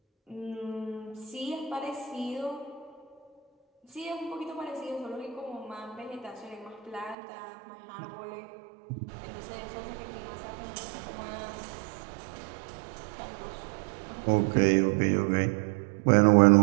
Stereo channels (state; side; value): drops out; left; at 7.2 s